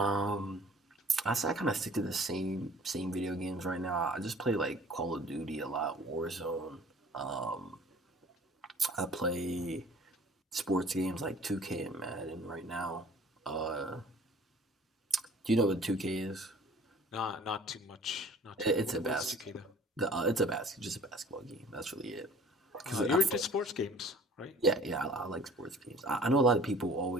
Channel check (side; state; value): both; normal; correlation 0.50